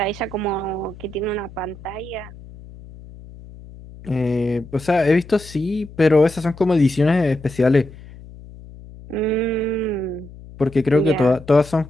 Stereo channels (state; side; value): noise; left; hum, 18 dB below the sound